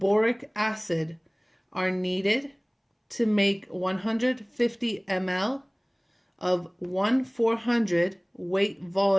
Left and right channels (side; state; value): both; identical; correlation 1.00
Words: acid are needed to make 150 ml of 1/400 weight